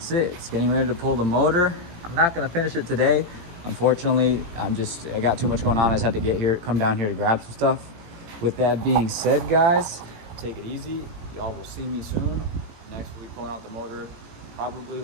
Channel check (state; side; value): late; left; 18 ms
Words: it. It's getting ready to pull the motor. I'm not gonna finish it today. Unfortunately, I got too much going on. I just had to come down here to grab some stuff. With that being said, guys, take it easy. Y'all will see me soon. Next, we'll be pulling out the motor, probably